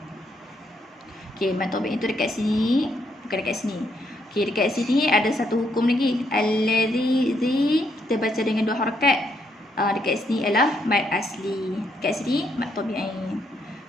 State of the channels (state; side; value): normal; both; correlation 0.75